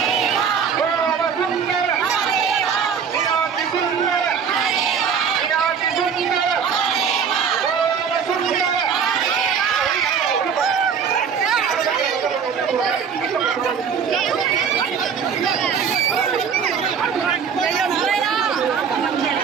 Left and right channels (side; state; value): left; quieter; 6.8 dB